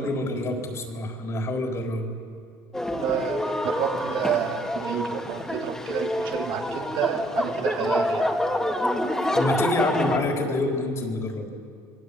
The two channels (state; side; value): normal; both; correlation 0.66